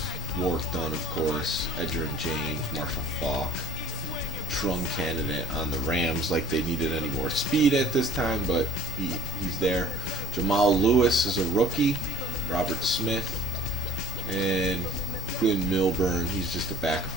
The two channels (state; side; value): normal; both; correlation 0.46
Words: Warwick Dunn, of course, Edgerrin James, Marshall Faulk. Trung candidate on the Rams, like they needed any more speed at this time, but he's there. Jamal Lewis is a rookie. Robert Smith and Glenn Milburn, he's just a